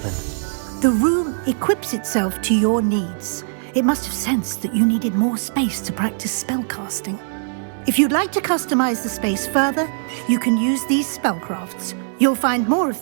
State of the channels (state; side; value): silent; left; digital silence